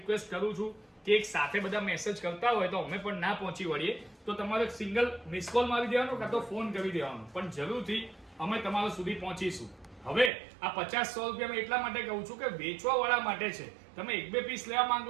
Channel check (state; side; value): drops out; left; at 10.3 s